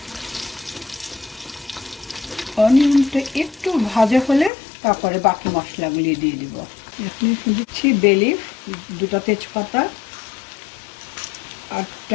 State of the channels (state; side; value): drops out; right; at 4.5 s